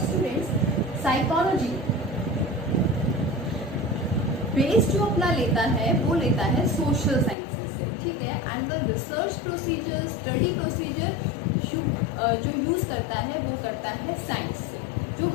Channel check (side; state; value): right; drops out; at 7.4 s